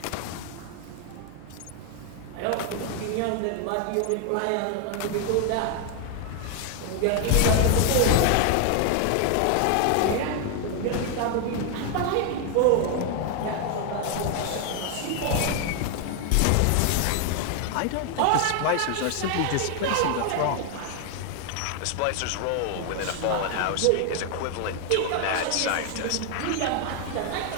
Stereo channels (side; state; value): both; different; correlation 0.01